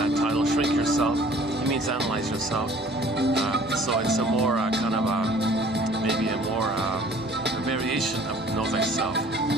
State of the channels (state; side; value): normal; both; correlation 0.52